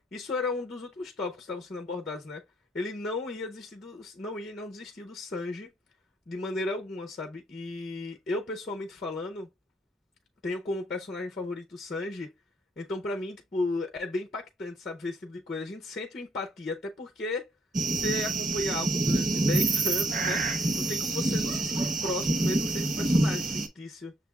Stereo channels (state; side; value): normal; both; correlation 0.71